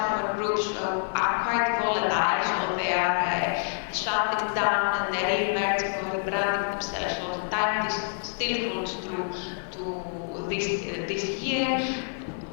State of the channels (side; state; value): right; silent; 60 dB below the other